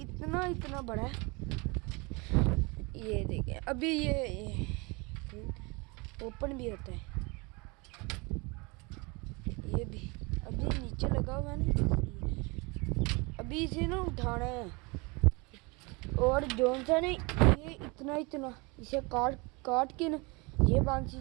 इतना बड़ा है। ये देखिए अभी ये ओपन भी होता है। ये भी अभी नीचे लगा हुआ है ना, अभी इसे ना उठाना है। और जौन सा ने ये इतना इसे काट के ना ये बांसी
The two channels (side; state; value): left; quieter; 27.8 dB